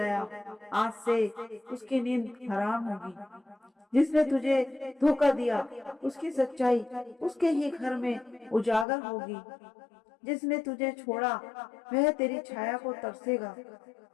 आज से उसकी नींद हराम होगी। जिसने तुझे धोखा दिया उसकी सच्चाई उसके ही घर में उजागर होगी। जिसने तुझे छोड़ा वह तेरी छाया को तरसेगा।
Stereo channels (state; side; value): drops out; right; at 8.8 s